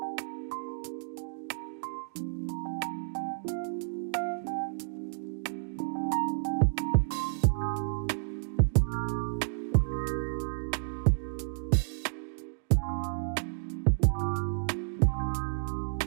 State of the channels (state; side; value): silent; left; digital silence